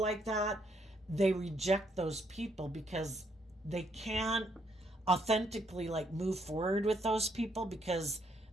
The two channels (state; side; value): normal; both; correlation 0.72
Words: that, they reject those people because they can't authentically like move forward with those people, because